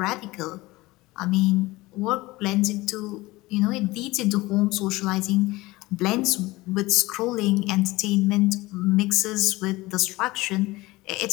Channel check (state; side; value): quieter; right; 20.2 dB